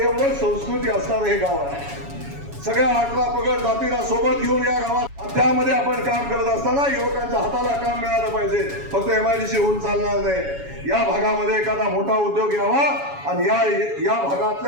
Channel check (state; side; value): late; left; 7.2 ms